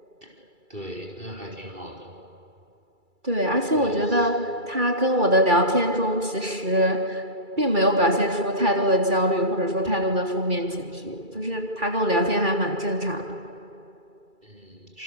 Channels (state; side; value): late; left; 2.3 ms